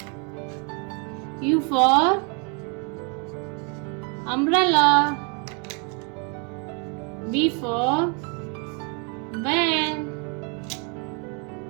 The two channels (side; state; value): left; quieter; 36.1 dB